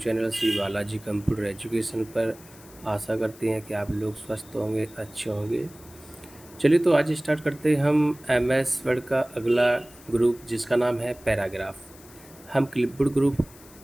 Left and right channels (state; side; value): noise; left; hiss, 22 dB below the sound